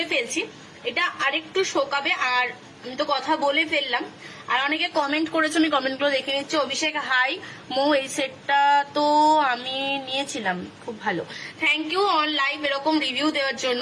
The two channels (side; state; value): both; identical; correlation 1.00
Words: ফেলছি। এটা আরেকটু শোকাবে। আর আমি তো কথা বলে ফেললাম। আর অনেকে কমেন্ট করেছো, আমি কমেন্টগুলো দেখে নিচ্ছি। অভিষেক হাই মো, এই সেটটা তো আমি নিয়েছিলাম, খুব ভালো, থ্যাংক ইউ অন লাইভ এরকম রিভিউ দেওয়ার জন্য।